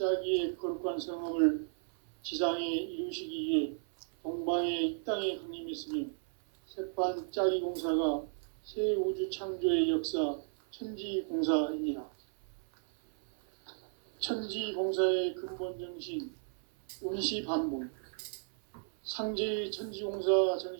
거룩한 성업을 지상에 이루시기 위해 동방의 이 땅에 강림했으며 새판짜기 공사가 새 우주 창조의 역사 천지공사이니라. 천지공사의 근본 정신 운시반본. 상제의 천지공사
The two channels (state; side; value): silent; left; 55 dB below the other